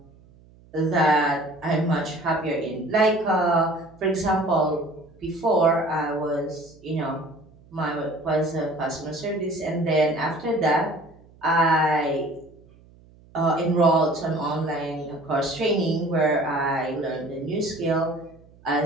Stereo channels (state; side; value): noise; right; hum, 26 dB below the sound